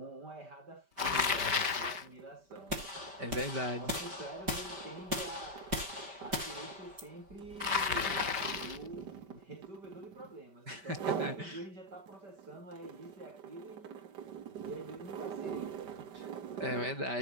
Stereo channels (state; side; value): late; left; 5.1 ms